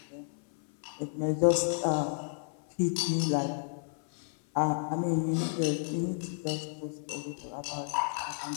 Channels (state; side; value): silent; right; 57 dB below the other